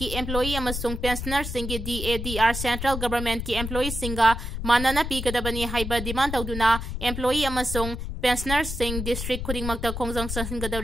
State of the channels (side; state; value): left; noise; rumble, 5 dB below the sound